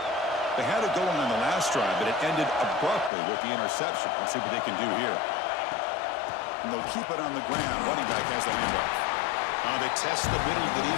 They had it going on the last drive, but it ended abruptly with the interception. Let's see what they can do here. And they'll keep it on the ground. Running back has the handoff. They test the middle of the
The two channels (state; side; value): drops out; right; at 3.1 s